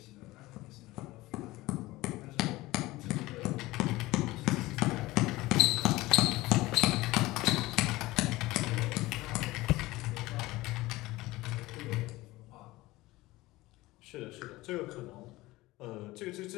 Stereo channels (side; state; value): right; quieter; 19.1 dB